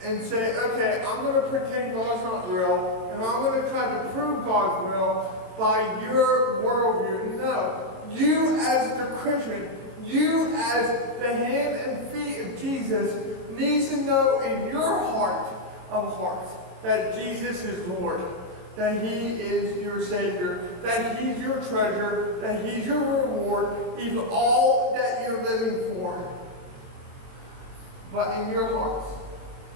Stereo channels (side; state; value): left; late; 22 ms